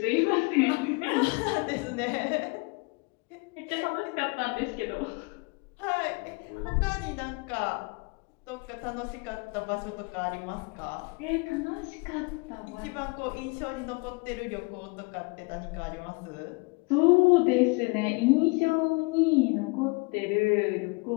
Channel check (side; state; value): right; quieter; 29.4 dB